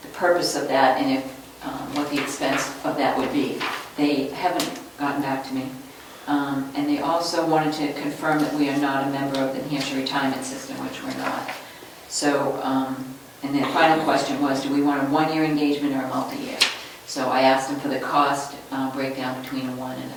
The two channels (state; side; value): identical; both; correlation 1.00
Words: the purpose of that and if what the expense of that would be. They haven't gotten back to me. And they also wanted to confirm that we are not a member of the New Hampshire retirement system, which we're not. So, and the final question was, do we want a one-year engagement or a multi-year? So I asked him for the cost breakdown between a 1 and